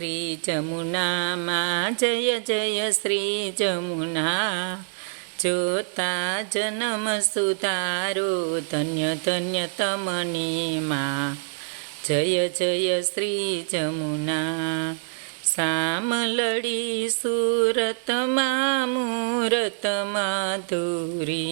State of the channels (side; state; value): left; silent; digital silence